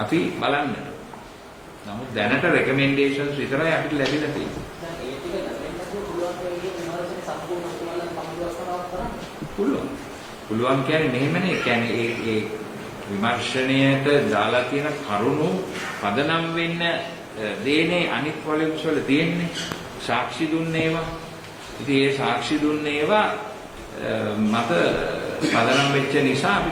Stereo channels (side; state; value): both; identical; correlation 1.00